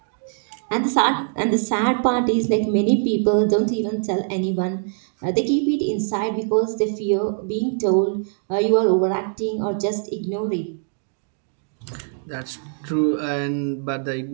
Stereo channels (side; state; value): left; silent; digital silence